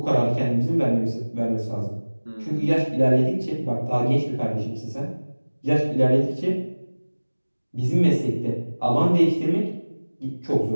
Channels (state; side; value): inverted; both; correlation -1.00